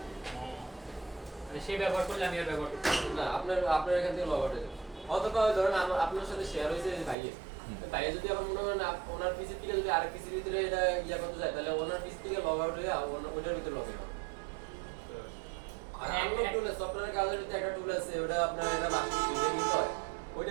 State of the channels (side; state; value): left; drops out; at 7.2 s